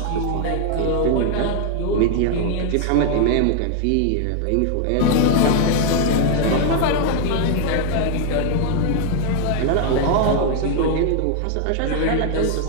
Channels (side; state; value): both; different; correlation 0.00